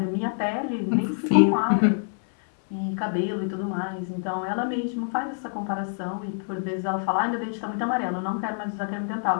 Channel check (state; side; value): silent; right; 61 dB below the other